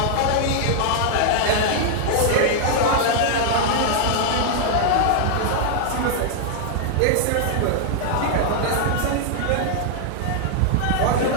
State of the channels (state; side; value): different; both; correlation 0.00